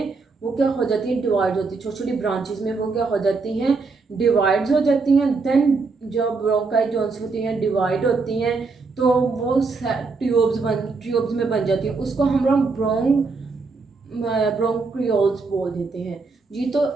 वो क्या हो जाती है? डिवाइड होती है। छोटी छोटी ब्रांचेस में वो क्या हो जाती हैं? डिवाइड्स हो जाती हैं। देन जब ब्रोंकाई जोन्स होती हैं डिवाइड होती हैं तो वो ट्यूब्स में बन जाती है। उसको हम लोग ब्रोंक्रियोल्स बोल देते हैं जी। तो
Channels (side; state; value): left; quieter; 4.2 dB